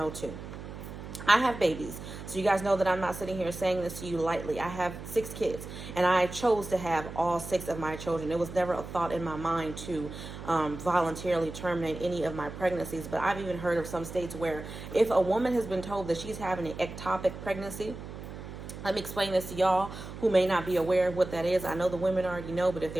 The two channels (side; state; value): right; noise; hum, 11 dB below the sound